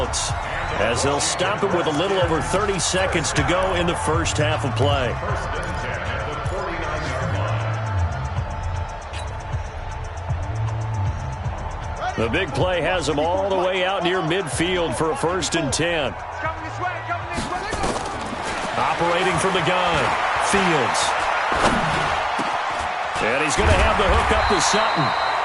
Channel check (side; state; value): both; identical; correlation 1.00